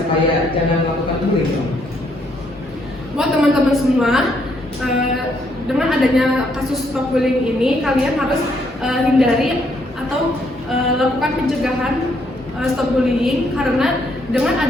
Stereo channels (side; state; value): both; normal; correlation 0.72